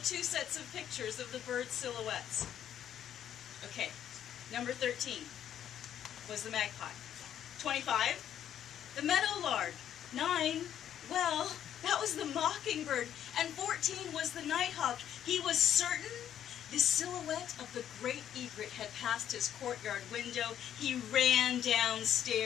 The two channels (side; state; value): right; quieter; 10.2 dB